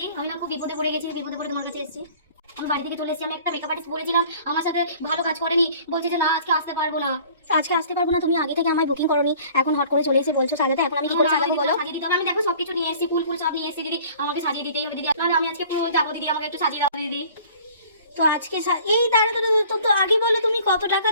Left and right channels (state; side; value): inverted; both; correlation -0.50